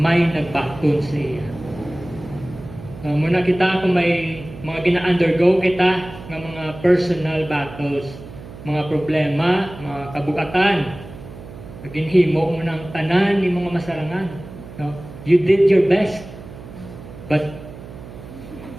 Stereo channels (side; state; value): right; noise; hum, 15 dB below the sound